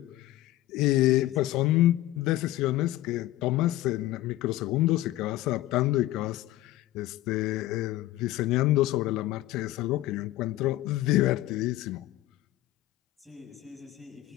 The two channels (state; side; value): quieter; right; 15.6 dB